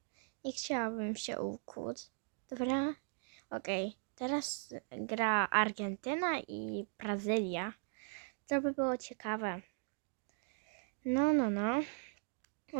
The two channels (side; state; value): left; silent; 52 dB below the other